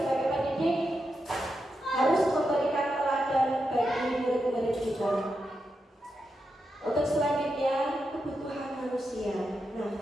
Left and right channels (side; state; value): both; normal; correlation 0.87